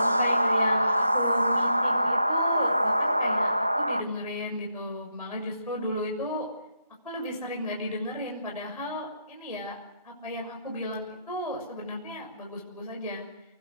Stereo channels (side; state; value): both; inverted; correlation -0.81